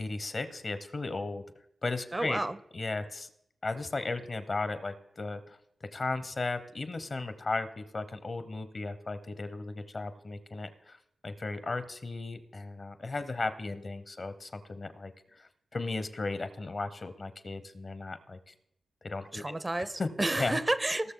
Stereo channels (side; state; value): both; normal; correlation 0.96